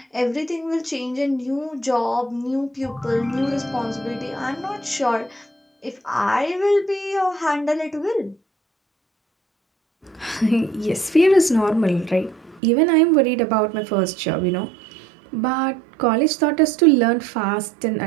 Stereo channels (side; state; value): left; drops out; at 12.6 s